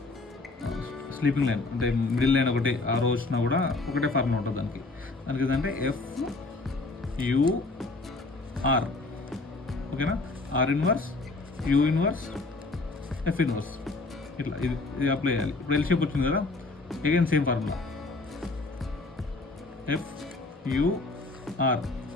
స్లీపింగ్ లైన్ అంటే మిడిల్ లైన్ ఒకటి ఆ రోజు వచ్చినా కూడా ఒకటే ఫార్ములా ఉంటుంది దానికి ఏంటంటే ఎఫ్ యూ ఆర్. ఓకేనా, R inverse U inverse F inverse ఇట్లా ఇది అప్లై చేయాలి. ఇప్పుడు ఎల్ షేప్ వచ్చింది కదా, again same formula F U R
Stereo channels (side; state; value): right; quieter; 3.4 dB